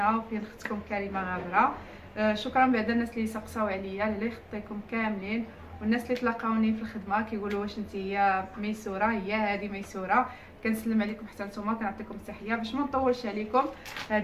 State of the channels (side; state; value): both; identical; correlation 1.00